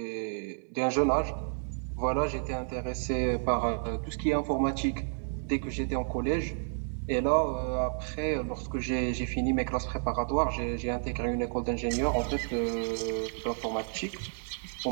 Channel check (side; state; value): left; silent; 57 dB below the other